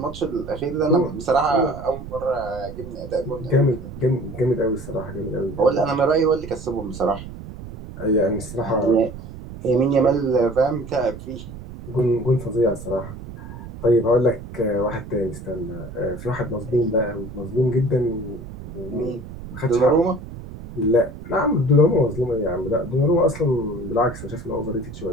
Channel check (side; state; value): right; noise; rumble, 12 dB below the sound